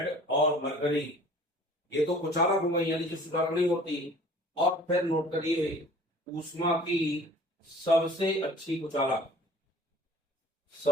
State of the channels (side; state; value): both; normal; correlation 0.48